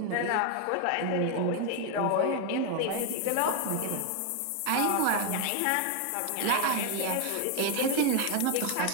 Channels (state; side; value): different; both; correlation 0.01